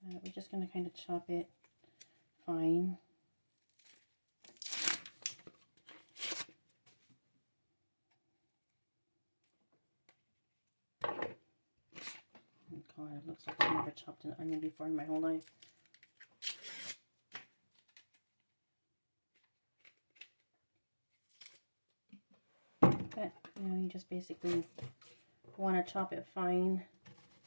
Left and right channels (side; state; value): both; inverted; correlation -1.00